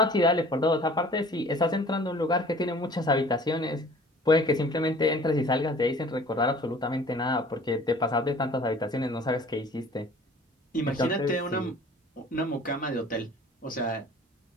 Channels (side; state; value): both; normal; correlation 0.49